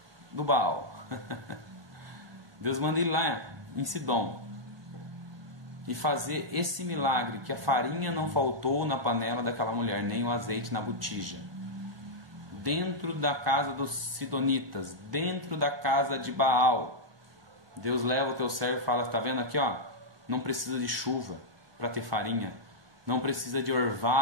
do Baal. Deus manda ele lá em Sidom e fazer esse milagre, que a farinha não faltou na panela daquela mulher, nem o azeite na botija. Dentro da casa dos sidonitas, dentro da casa de Baal, Deus leva o teu servo e fala: está vendo aqui, ó, não precisa de chuva para ter farinha, não precisa de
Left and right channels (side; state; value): left; late; 1.2 ms